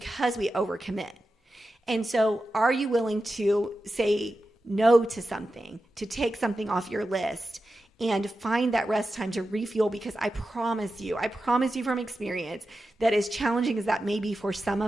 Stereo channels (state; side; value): normal; both; correlation 0.92